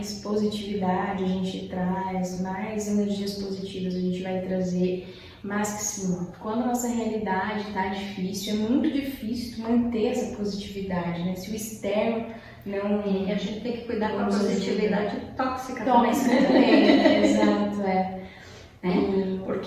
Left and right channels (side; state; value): both; identical; correlation 1.00